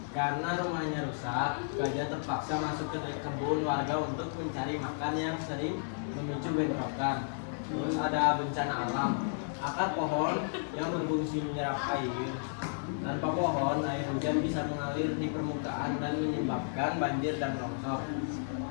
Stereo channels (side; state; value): right; silent; digital silence